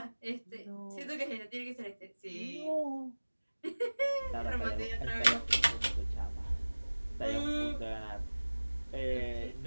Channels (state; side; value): inverted; both; correlation -1.00